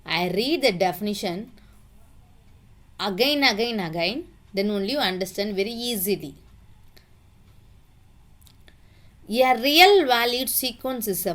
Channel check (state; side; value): identical; both; correlation 1.00